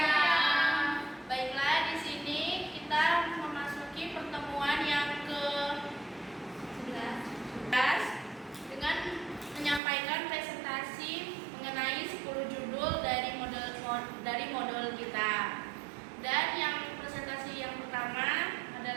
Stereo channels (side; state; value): left; drops out; at 9.8 s